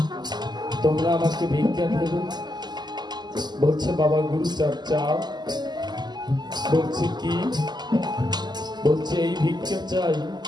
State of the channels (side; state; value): left; late; 0.21 ms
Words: তোমরা আমাকে ভিক্ষা দেবে। বলছে, বাবা গুরুচাঁদ চাও? বলছে, কি? বলছে, এই ভিক্ষা চাই।